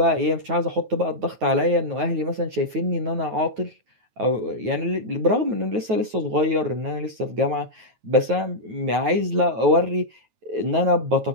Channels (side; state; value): left; late; 9.3 ms